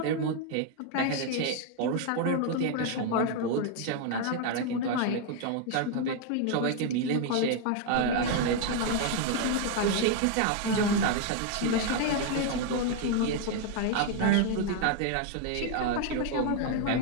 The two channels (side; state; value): both; different; correlation 0.00